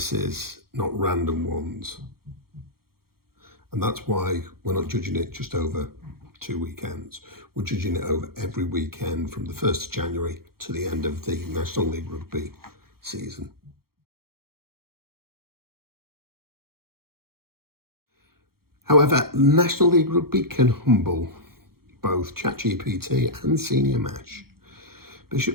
not random ones. And that's why we're not judging it just over 2 weekends. We're judging it over every weekend from the 1st of January to the end of the National League Rugby season. However, National League Rugby can humble both ChatGPT and Senior Mash.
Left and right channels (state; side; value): late; left; 0.94 ms